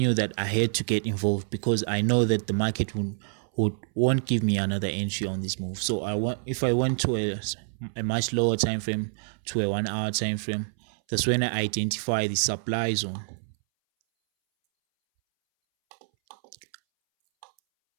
that I had to get involved, because I know that the market won't give me another entry on this move. So if I went to a much lower time frame, to a 1-hour time frame, that's when I identify the supply zone.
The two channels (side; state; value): left; silent; 60 dB below the other